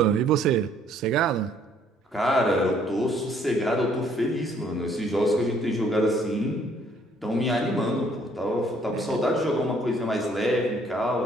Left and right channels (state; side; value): normal; both; correlation 0.63